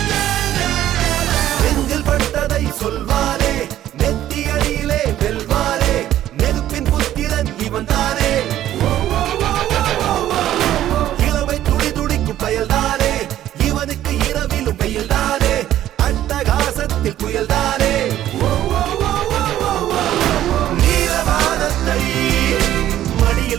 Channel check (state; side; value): quieter; left; 12.6 dB